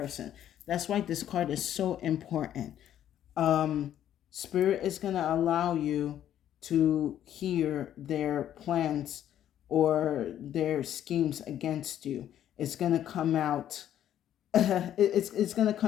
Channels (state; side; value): quieter; right; 11.0 dB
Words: That's why this card is so important. Spirit is going to allow you to hear their plans or their schemes against you. It's going to come out it's going to